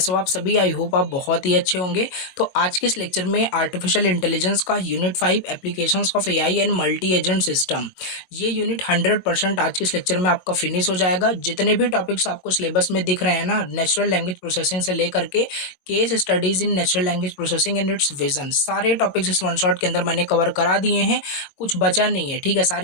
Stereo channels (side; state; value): right; late; 22 ms